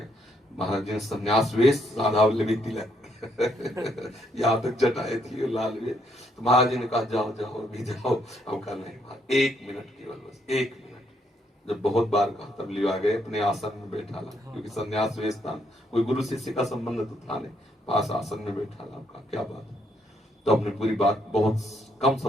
महाराज जी ने संन्यास वेश, राधा वल्लभी तिलक यहाँ तक जटाए थी लाल वे, तो महाराज जी ने कहा जाओ जाओ अभी जाओ। अब कहा नहीं, 1 मिनट केवल, बस 1 मिनट। जब बहुत बार कहा तब लिवा गए, अपने आसन में बैठा ला, क्योंकि संन्यास वेश था, कोई गुरु शिष्य का संबंध तो था नहीं, पास आसन में बैठा ला। कहा क्या बात है? तो हमने पूरी बात बहुत कम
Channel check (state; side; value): normal; both; correlation 0.73